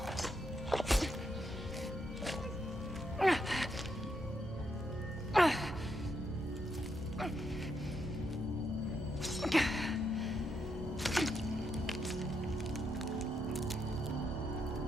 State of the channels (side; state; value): both; normal; correlation 0.80